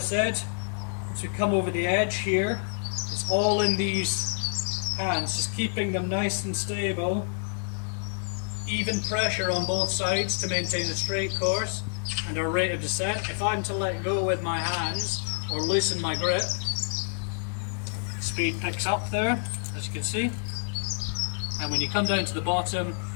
said, as we come over the edge here, it's all in these hands, just keeping them nice and stable, even pressure on both sides to maintain a straight course and our rate of descent. If I'm to let go with my hands or loosen my grip, speed picks up there, as you can see. And when you come down to the bottom,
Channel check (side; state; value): right; silent; digital silence